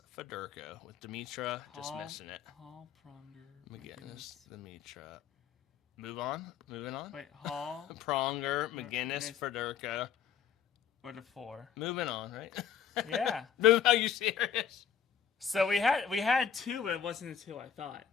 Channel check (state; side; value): quieter; right; 7.8 dB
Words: Federko, with Dimitra just missing it. Hall, Pronger, McGinnis, Dimitra. Moving on. Wait, Hall, Pronger, McGinnis, Federka. What a 4. Moving on, right? Yeah. Are you serious? So we had 2, but it wasn't the 2 I thought.